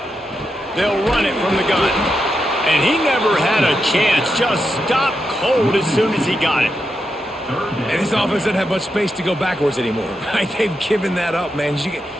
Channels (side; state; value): both; normal; correlation 0.85